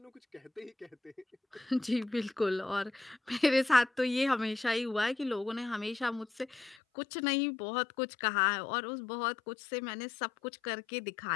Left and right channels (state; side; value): drops out; right; at 6.8 s